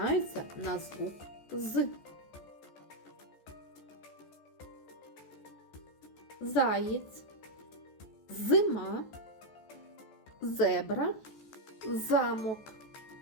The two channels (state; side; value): late; right; 14 ms